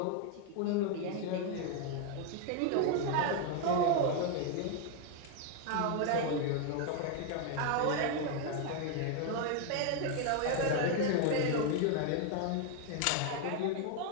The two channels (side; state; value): both; different; correlation 0.01